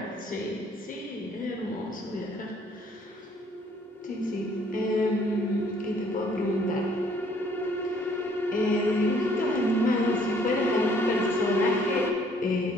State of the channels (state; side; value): normal; both; correlation 0.62